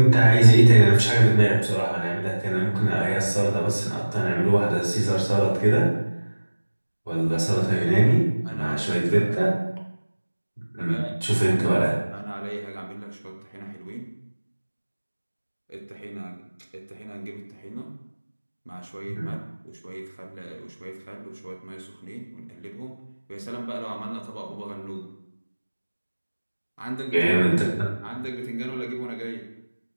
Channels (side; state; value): both; inverted; correlation -1.00